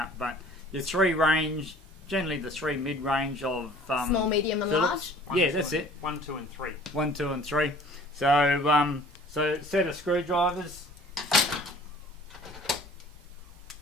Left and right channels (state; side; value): normal; both; correlation 0.50